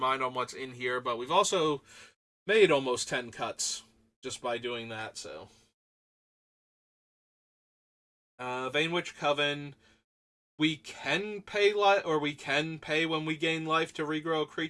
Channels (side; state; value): both; identical; correlation 1.00